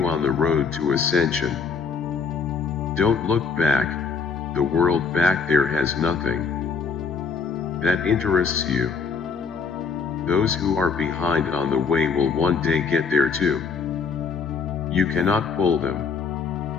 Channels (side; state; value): right; quieter; 5.4 dB